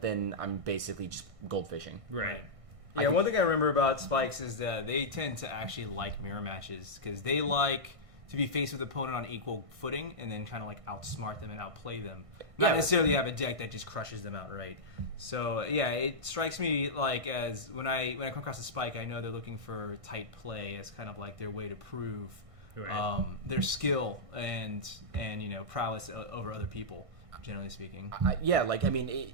then I'm basically just goldfishing. Right. Yeah, one thing I remember about Spikes is that they tend to actually like mirror matches because they like to be faced with the opponent on equal footing and then kind of like outsmart them and outplay them. Not necessarily have a deck that just crushes them outright. So yeah, it strikes me like as when I come across a Spike, I know they're looking for tight play as kind of like their way to prove their skill and prowess over other people. Generally speaking,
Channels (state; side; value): late; left; 1.6 ms